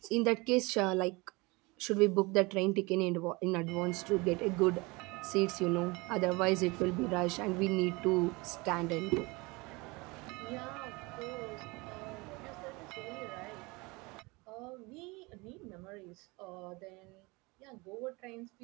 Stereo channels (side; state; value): left; quieter; 25.1 dB